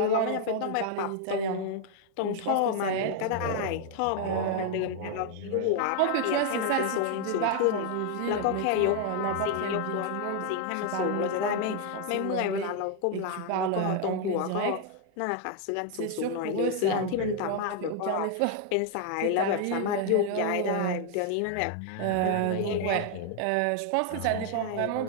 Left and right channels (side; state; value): both; different; correlation 0.00